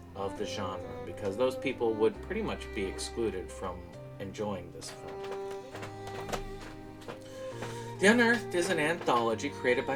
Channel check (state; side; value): identical; both; correlation 1.00